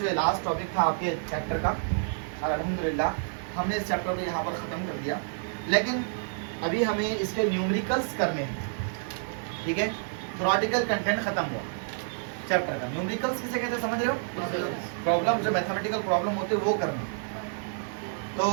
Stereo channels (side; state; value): left; silent; digital silence